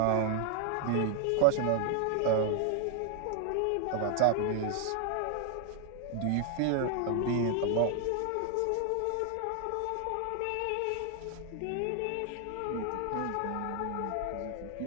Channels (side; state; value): both; different; correlation 0.00